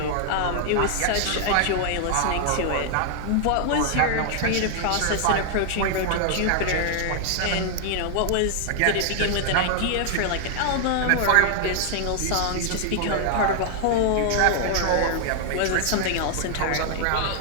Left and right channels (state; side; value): different; both; correlation 0.00